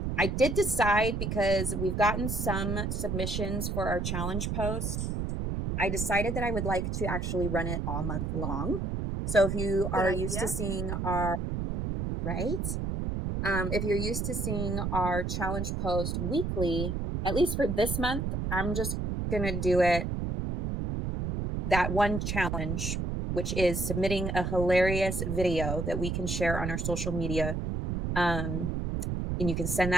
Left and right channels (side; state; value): right; noise; rumble, 2 dB below the sound